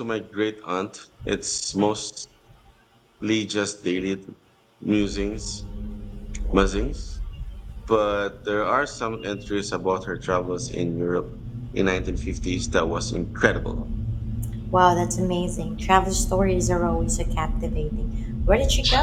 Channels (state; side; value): identical; both; correlation 1.00